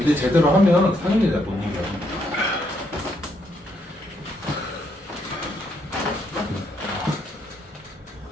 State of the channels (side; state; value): both; normal; correlation 0.74